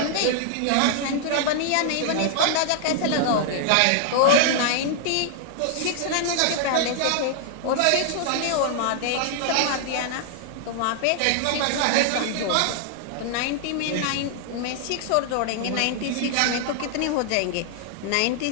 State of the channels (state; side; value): different; both; correlation 0.00